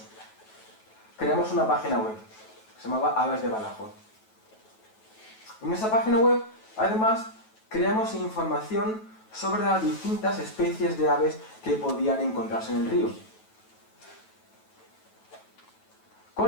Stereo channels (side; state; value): right; late; 9.2 ms